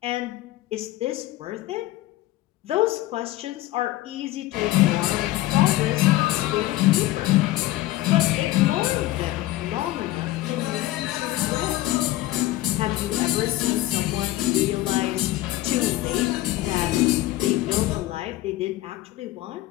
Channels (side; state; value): right; quieter; 16.6 dB